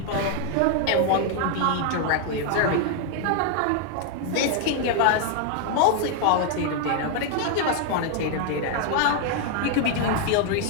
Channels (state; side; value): different; both; correlation 0.00